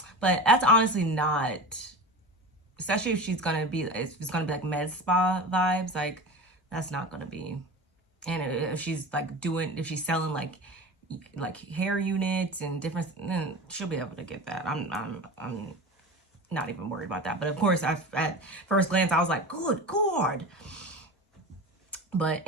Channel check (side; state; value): both; normal; correlation 0.30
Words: but that's honestly not, especially if it's gonna be med spa vibes, that's not gonna be. And if she's if she's selling hair units and different, then she'll be able to get that. I'm not even worried about that. But of course, at first glance, I was good God. But